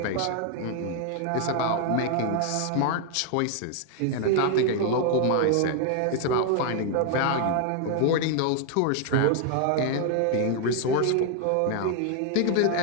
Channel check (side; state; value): both; different; correlation 0.00